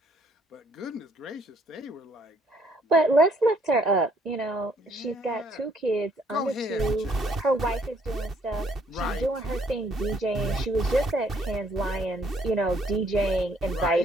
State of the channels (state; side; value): normal; both; correlation 0.66